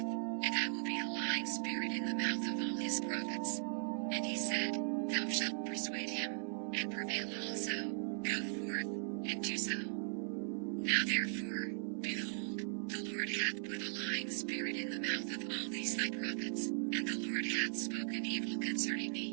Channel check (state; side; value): silent; left; 52 dB below the other